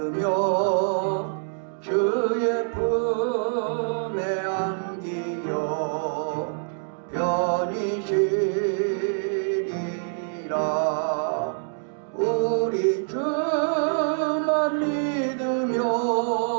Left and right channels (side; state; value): left; silent; digital silence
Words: 주의 품에 안기어 편히 쉬리라. 우리 주만 믿으면